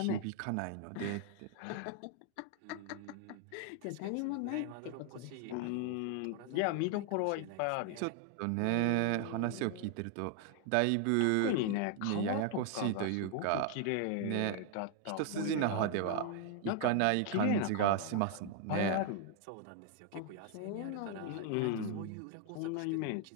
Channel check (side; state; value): both; different; correlation 0.00